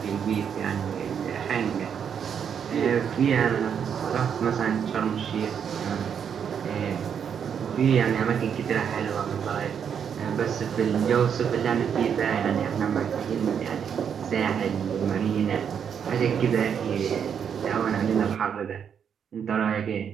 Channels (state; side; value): quieter; left; 7.7 dB